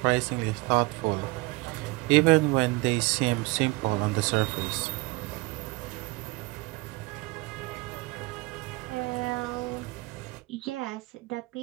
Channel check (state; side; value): quieter; left; 23.9 dB